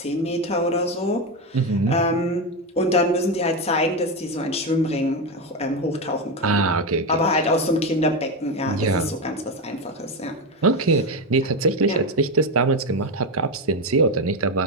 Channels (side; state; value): both; normal; correlation 0.13